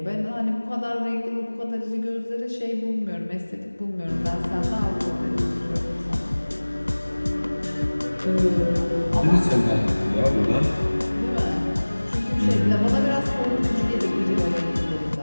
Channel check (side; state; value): both; inverted; correlation -1.00